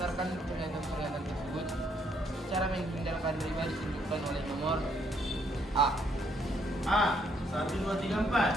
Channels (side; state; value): both; normal; correlation 0.71